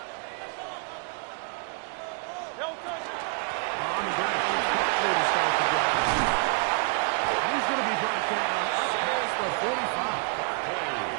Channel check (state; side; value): quieter; left; 37.1 dB